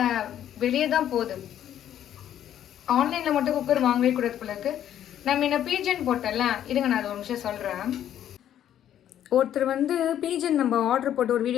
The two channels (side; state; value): right; quieter; 10.8 dB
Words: வெளியே தான் போகுது. ஆன்லைனில் மட்டும் குக்கர் வாங்கவே கூடாது போல இருக்கு. நம்ம என்ன பீஜன் போட்டல, இதுங்க நான் அது ஒரு நிமிஷம் சொல்கிறேன். ஒருத்தர் வந்து பீஜன் நம்ம ஆர்டர் போட்டு ஒரு